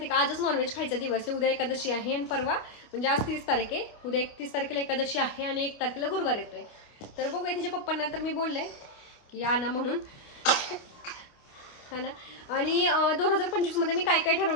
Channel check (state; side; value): late; right; 28 ms